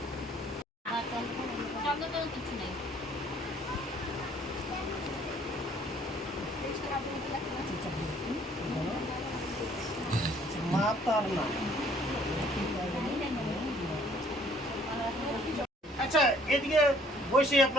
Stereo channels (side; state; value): both; normal; correlation 0.59